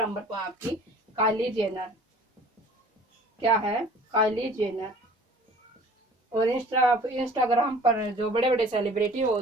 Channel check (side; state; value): both; normal; correlation 0.49